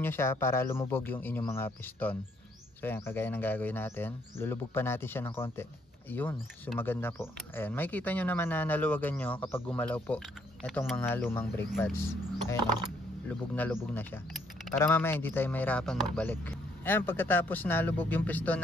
nyo siya para lumubog yung inyong mga piston. So ayan, kagaya ng gagawin natin. Lulubog pa natin siya ng konti. Yun, sumaganda po. Ayan, makikita nyo naman na naluwagan nyo kapag gumalaw po itong mga lumang brake pads. Ayan lubog na siya. Para mamaya hindi tayo mahirapan magbalik. Ayan, pagkatapos nalubog yung piston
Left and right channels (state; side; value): normal; both; correlation 0.69